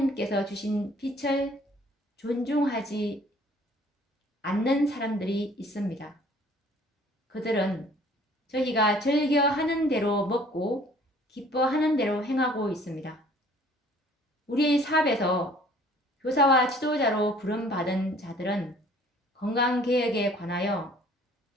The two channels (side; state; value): both; normal; correlation 0.55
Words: 주신 빛을 존중하지 않는 사람들이 있습니다. 그들은 저희가 즐겨하는 대로 먹고 기뻐하는 대로 행하고 있습니다. 우리의 사업에서 교사와 지도자로 부름받은 자들은 건강개혁에 관하여